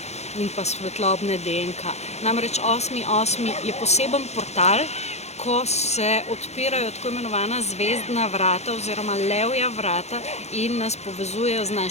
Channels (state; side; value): late; right; 0.32 ms